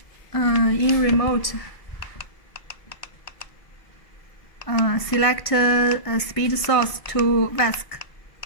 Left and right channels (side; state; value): right; late; 1.7 ms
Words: In remote, select speed source to VESC